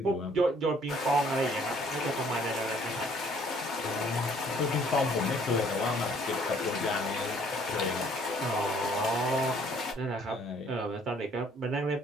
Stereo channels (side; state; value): both; normal; correlation 0.61